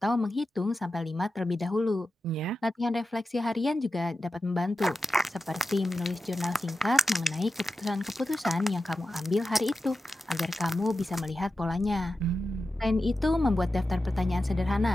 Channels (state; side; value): normal; both; correlation 0.92